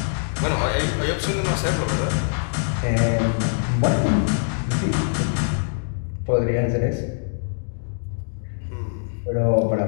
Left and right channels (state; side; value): silent; right; digital silence